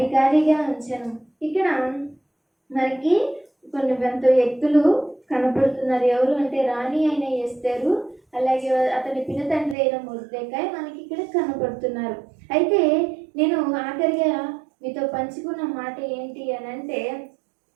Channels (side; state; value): left; drops out; at 9.8 s